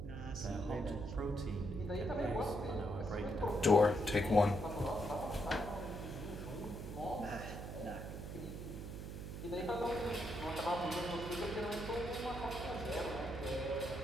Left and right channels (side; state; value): right; noise; hum, 7 dB below the sound